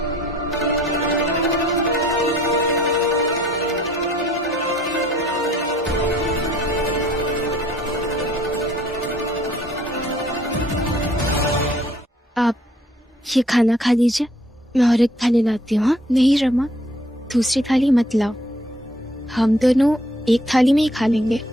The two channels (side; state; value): both; normal; correlation 0.60